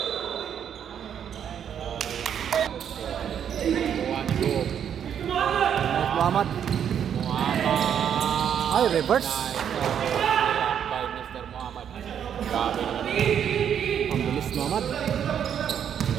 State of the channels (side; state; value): left; quieter; 8.7 dB